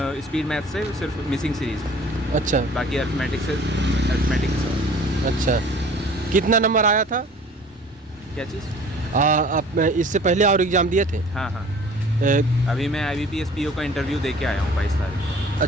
स्पीड मैथ से सिर्फ मिसिंग सीरीज, अच्छा बाकी अर्थमेटिक से। अच्छा। कितना नंबर आया था? क्या चीज़? आप इससे पहले और एग्ज़ाम दिए थे? हाँ हाँ, ए, अभी मैं IBPS PO का इंटरव्यू दे के आया हूँ 22 तारीख।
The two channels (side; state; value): both; normal; correlation 0.49